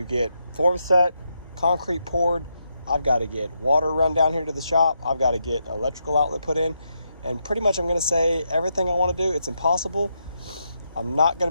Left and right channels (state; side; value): inverted; both; correlation -0.82